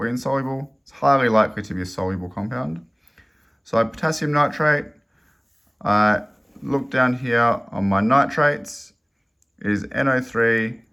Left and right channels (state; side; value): identical; both; correlation 1.00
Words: insoluble. It's highly likely to be a soluble compound. So potassium nitrate, I look down here on my nitrates, it is NO3.